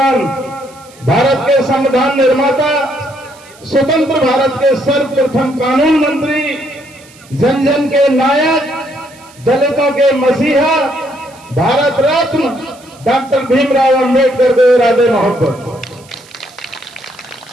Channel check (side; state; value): right; noise; hiss, 25 dB below the sound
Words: भारत के संविधान निर्माता, स्वतंत्र भारत के सर्वप्रथम कानून मंत्री, जन जन के नायक, दलितों के मसीहा, भारत रत्न डॉक्टर भीमराव अंबेडकर को इरादे मोहब्बत।